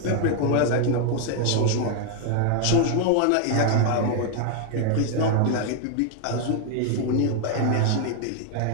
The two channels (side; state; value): both; different; correlation 0.00